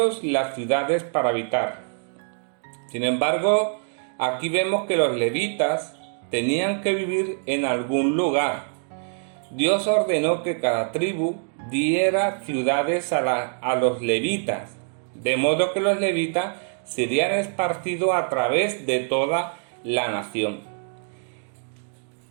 las ciudades para habitar. Sin embargo, aquí vemos que los levitas tenían que vivir en algún lugar. Dios ordenó que cada tribu diera ciudades a los levitas, de modo que los levitas serían esparcidos a través de toda la nación.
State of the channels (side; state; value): left; silent; 62 dB below the other